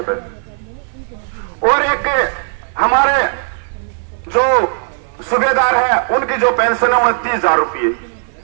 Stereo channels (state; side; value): silent; left; 64 dB below the other